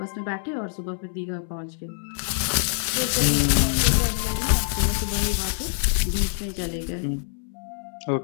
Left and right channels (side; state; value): right; silent; 62 dB below the other